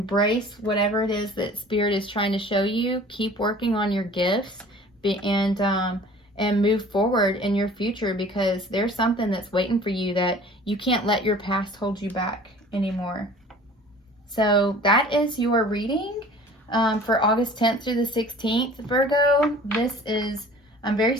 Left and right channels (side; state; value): both; normal; correlation 0.47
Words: whatever it is that Spirit is trying to show you. Keep working on your gifts, and move forward in your future, because there's something that's waiting for you that you can't let your past hold you back anymore. So that is your reading for August 10th through the 16th, Virgo. I'm very